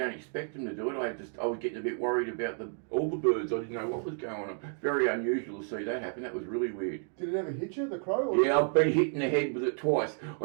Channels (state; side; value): silent; left; 57 dB below the other